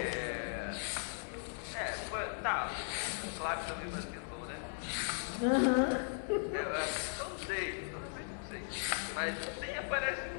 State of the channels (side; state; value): right; silent; digital silence